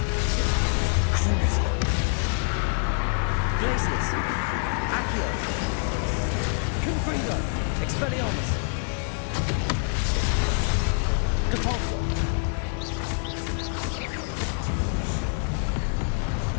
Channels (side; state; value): right; silent; 56 dB below the other